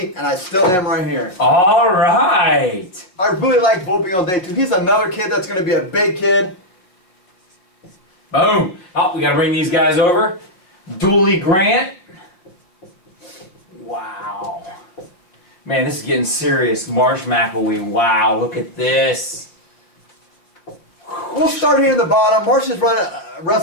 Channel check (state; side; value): late; right; 5.5 ms